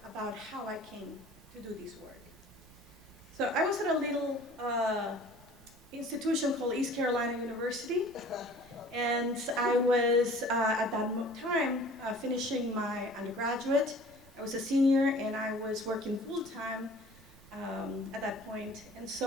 how I came to do this work. So I was at a little institution called East Carolina University, and I was at that time finishing my undergraduate. I was a senior, and I was working full-time at that point. And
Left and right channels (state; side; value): noise; right; rumble, 24 dB below the sound